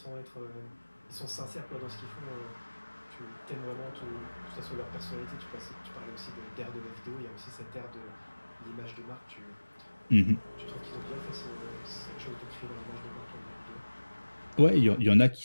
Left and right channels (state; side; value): inverted; both; correlation -1.00